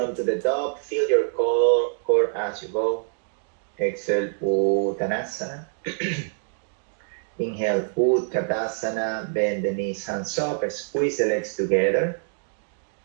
to the top. Feel your core as you go. Exhale, Uttanasana. Inhale, Utkatasana. Bend the knees, hands up. Squeeze the legs together.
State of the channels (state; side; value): silent; left; digital silence